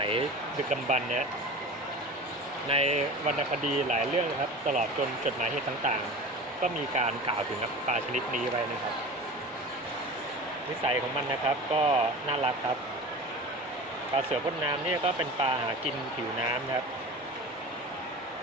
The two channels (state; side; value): normal; both; correlation 0.34